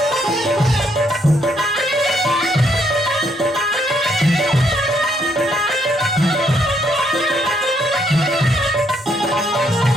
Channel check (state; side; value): normal; both; correlation 0.72